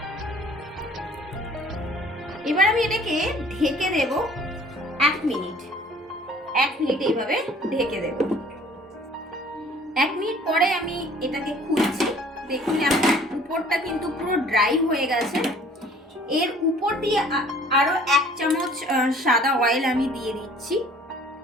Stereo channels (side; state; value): both; normal; correlation 0.53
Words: এবার আমি এটাকে ঢেকে দেব 1 মিনিট। 1 মিনিট এইভাবে ঢেকে দেব। 1 মিনিট পরে আমি এটাকে খুলছি। দেখুন আমার উপরটা কিন্তু পুরো ড্রাই হয়ে গেছে। এর উপর দিয়ে আরো 1 চামচ সাদা অয়েল আমি দিয়ে দিচ্ছি।